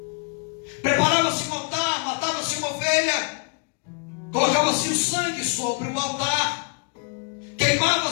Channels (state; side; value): quieter; right; 36.5 dB